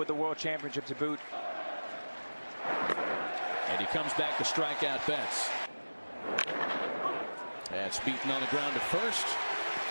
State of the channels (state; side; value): inverted; both; correlation -1.00